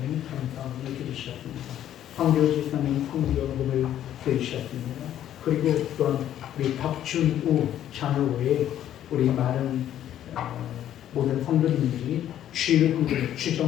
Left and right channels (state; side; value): quieter; right; 11.3 dB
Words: 감사함을 드리셨습니다. 황교 지사님 성경을 드리셨습니다. 그리고 또한 우리 박준우 장로회 우리 많은 모든 성도님들이 주일 헌금, 주정